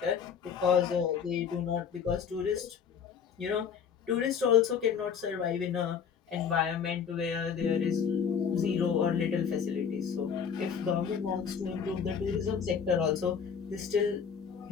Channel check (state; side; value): quieter; right; 7.0 dB